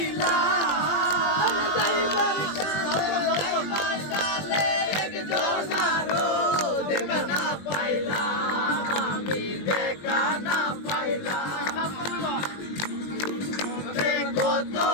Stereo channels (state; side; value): late; right; 20 ms